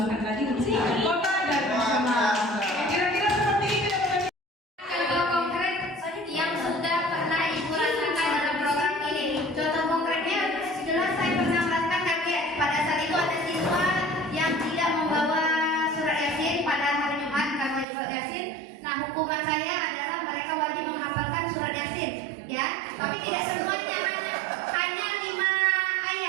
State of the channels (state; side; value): drops out; left; at 17.9 s